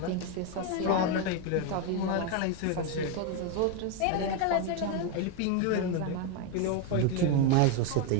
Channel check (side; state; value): both; different; correlation 0.02